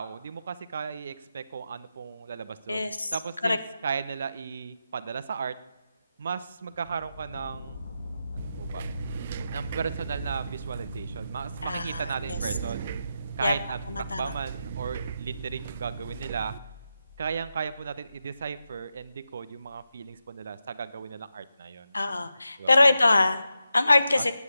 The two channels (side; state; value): both; inverted; correlation -0.88